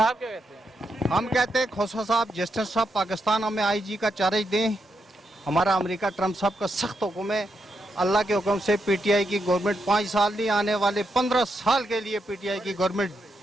क्या कहते हैं? हम कहते हैं खोसा साहब, जस्टिस साहब पाकिस्तान हमें IG का चार्ज दें। हमारा अमेरिका ट्रम्प साहब का सख्त हुक्म है, अल्लाह के हुक्म से PTI की गवर्नमेंट 5 साल नहीं, आने वाले 15 साल के लिए PTI की गवर्नमेंट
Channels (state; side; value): normal; both; correlation 0.82